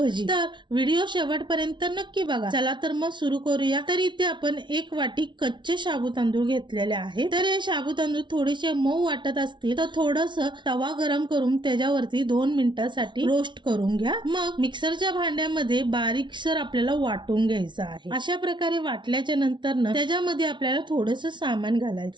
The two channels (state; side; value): late; left; 0.23 ms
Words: तर व्हिडिओ शेवटपर्यंत नक्की बघा। चला तर मग सुरू करूया। तर इथे आपण 1 वाटी कच्चे साबू तांदूळ घेतलेले आहे। तर हे साबू तांदूळ थोडेसे मऊ वाटत असतील तर थोडस तवा गरम करून त्याच्यावरती 2 मिनिटांसाठी रोस्ट करून घ्या। मग मिक्सरच्या भांड्यामध्ये बारीकसर आपल्याला वाटून घ्यायचं आहे। अशा प्रकारे वाटल्याच्या नंतर त्याच्यामध्ये आपल्याला थोडस सामान